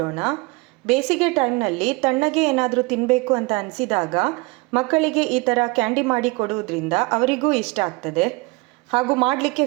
ಬೇಸಿಗೆ ಟೈಮ್ನಲ್ಲಿ ತಣ್ಣಗೆ ಏನಾದರೂ ತಿನ್ನಬೇಕು ಅಂತ ಅನಿಸಿದಾಗ ಮಕ್ಕಳಿಗೆ ಈ ಥರ ಕ್ಯಾಂಡಿ ಮಾಡಿ ಕೊಡುವುದರಿಂದ ಅವರಿಗೂ ಇಷ್ಟ ಆಗ್ತದೆ, ಹಾಗೂ ಮಾಡಲಿಕ್ಕೆ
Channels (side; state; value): left; quieter; 25.8 dB